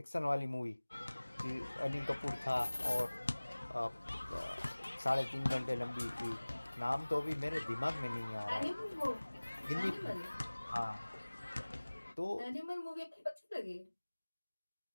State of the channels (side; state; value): both; inverted; correlation -1.00